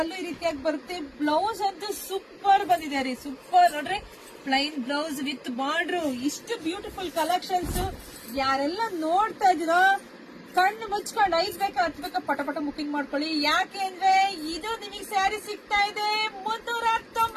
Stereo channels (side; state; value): both; identical; correlation 1.00